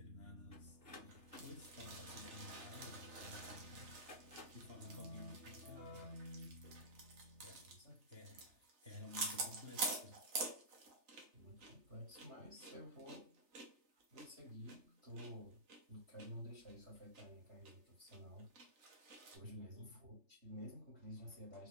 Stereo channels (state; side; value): late; left; 3.3 ms